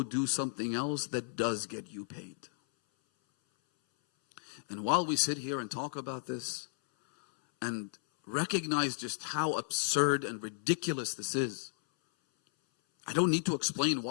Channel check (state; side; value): silent; right; 55 dB below the other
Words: do something else that does get you paid. And while we sit here and talk about this and recognize just how absurd and ridiculous this is, I don't need to explain